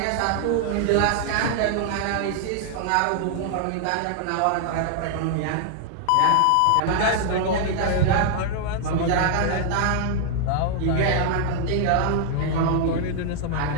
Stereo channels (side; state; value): both; different; correlation 0.00